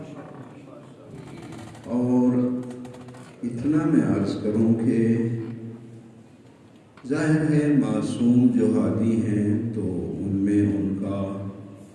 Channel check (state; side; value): identical; both; correlation 1.00